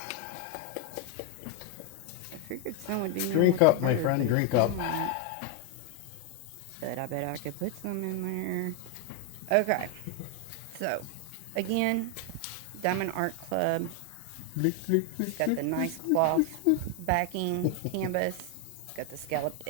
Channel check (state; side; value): different; both; correlation 0.01